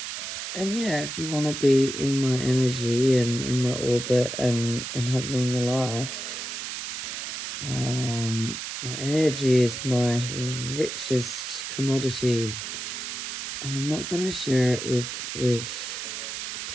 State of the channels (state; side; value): noise; right; hiss, 6 dB below the sound